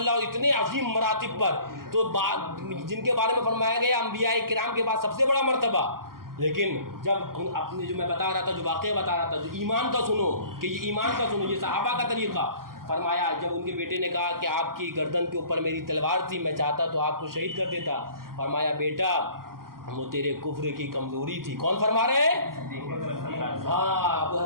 اور اتنے عظیم مراتب پر، تو جن کے بارے میں فرمایا گیا انبیاء کرام کے بعد سب سے بڑا مرتبہ، لیکن جب اپنے جو میں بتا رہا تھا، جو واقعہ بتا رہا تھا، جو ایمان کا سنو کہ یہ ایمان کا سنو، یہ صحابہ کا طریقہ، فرمایا جب ان کے بیٹے نے کہا کہ آپ کی گردن کے اوپر میری تلوار تھی، میں چاہتا تو آپ کو شہید کر دیتا، فرمایا بیٹا وہ تیرے کفر کی کمزوری تھی۔ کون فرما رہے ہیں؟ ہاں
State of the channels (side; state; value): left; late; 0.92 ms